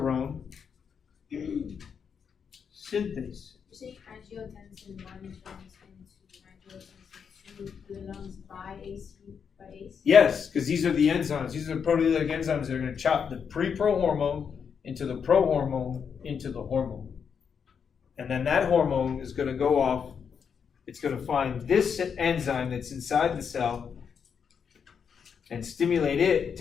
synthase. You say angiotensin 1 turns into angiotensin 2 to the lungs by ACE? Yes, because these are the enzymes. These are the proteolytic enzymes that are going to chop the pre-pro hormone into the pro hormone into the hormone. And then that hormone is going to go off. It's going to find this enzyme that's inside the cell and stimulate it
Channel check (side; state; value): right; quieter; 6.8 dB